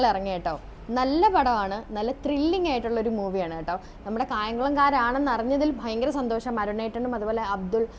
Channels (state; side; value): identical; both; correlation 1.00